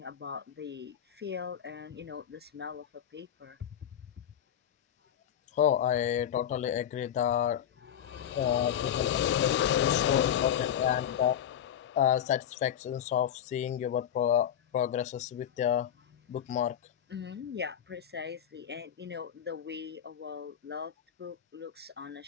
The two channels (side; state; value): right; quieter; 9.7 dB